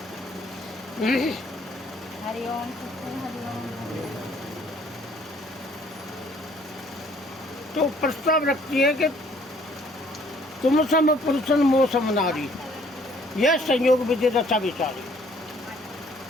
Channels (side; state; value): both; normal; correlation 0.60